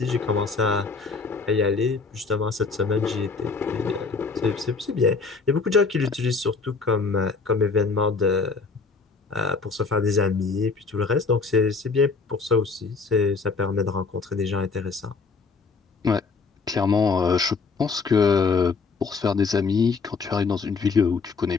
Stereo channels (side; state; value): right; quieter; 4.6 dB